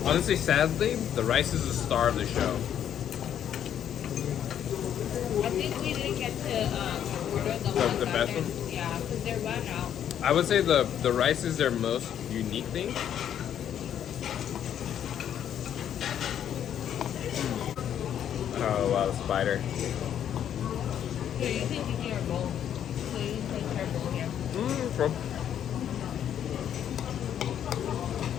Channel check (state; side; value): quieter; right; 9.7 dB